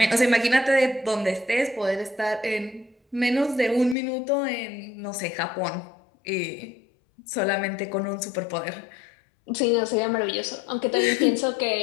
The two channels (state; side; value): drops out; right; at 4.0 s